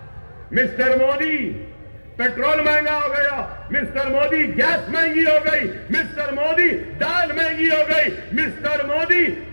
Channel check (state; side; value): inverted; both; correlation -1.00